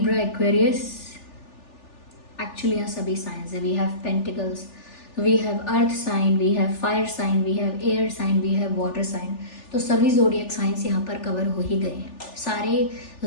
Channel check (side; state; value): right; late; 3.4 ms